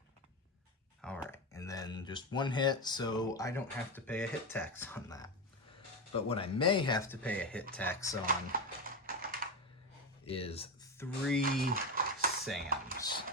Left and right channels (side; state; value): both; normal; correlation 0.15